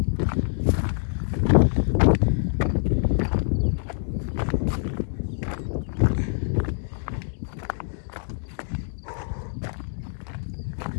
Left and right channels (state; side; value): silent; right; digital silence